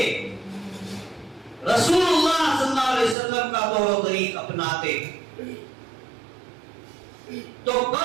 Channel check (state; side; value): drops out; left; at 3.2 s